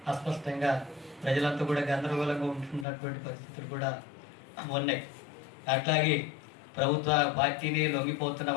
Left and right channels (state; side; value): drops out; right; at 2.9 s